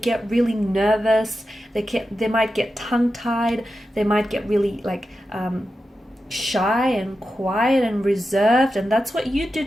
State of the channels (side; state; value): both; normal; correlation 0.91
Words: really nervous. They might get tongue-tied. They might get really shy and quiet and reserved, and that's what you do